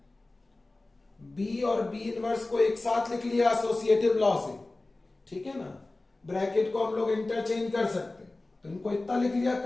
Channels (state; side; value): quieter; right; 3.0 dB